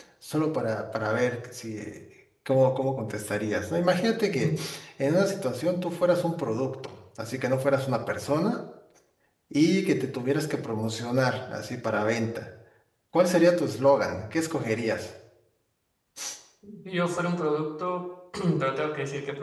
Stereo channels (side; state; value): both; identical; correlation 1.00